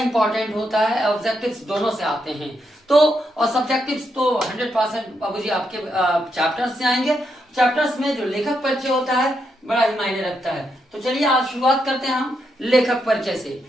होता है, ऑब्जेक्टिव्स दोनों से आते हैं तो, और सब्जेक्टिव्स तो 100% बाबूजी आपके चैप्टर्स से आएंगे। चैप्टर्स में जो लेखक परिचय होता है बड़ा ही मायने रखता है। तो चलिए आज शुरुआत करते हैं हम लेखक परिचय से।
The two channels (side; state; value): both; normal; correlation 0.81